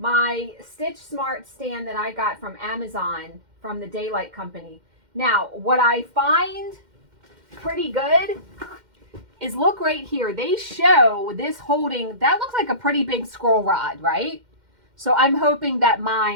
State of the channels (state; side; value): late; left; 2.1 ms